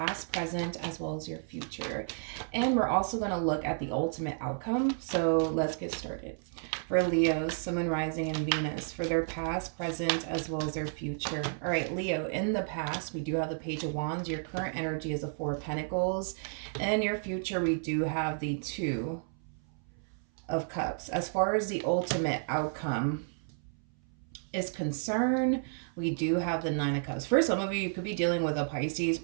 present, as well as your future. And we're also going to look at the ultimate outcome. So, let's get started. For Leo, Sun, Rising, and Venus, for their past, present, as well as their future. All right, Leo, in the past, we do have the Page of Wands. Your current energy is the Four of Pentacles. And in your future, we do have the Two of Cups. As far as the ultimate outcome is concerned, we do have the Nine of Cups. For some of you, you could be dealing with a Pisces,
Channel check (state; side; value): silent; left; 56 dB below the other